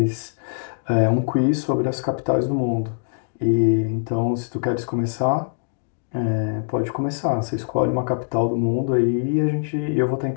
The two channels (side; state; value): right; silent; digital silence